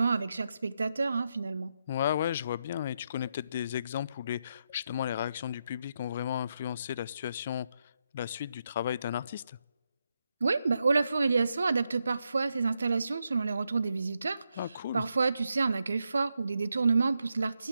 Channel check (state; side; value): inverted; both; correlation -0.83